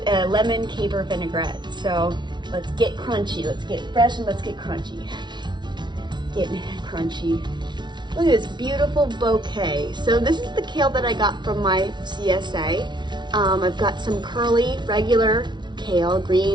a lemon caper vinaigrette. So let's get crunchy, let's get fresh, and let's get crunchy. Getting crunchy. Look at this beautiful bouquet. So this is the kale that I got from my CSA. I've got some curly, regular kale,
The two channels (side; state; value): left; late; 0.21 ms